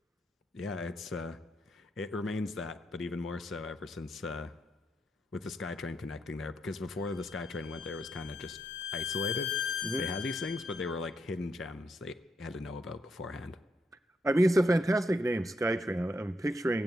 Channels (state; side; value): normal; both; correlation 0.80